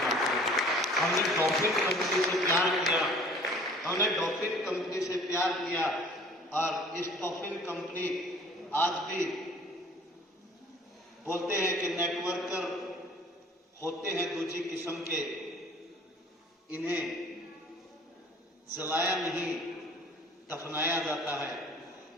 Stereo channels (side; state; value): both; normal; correlation 0.51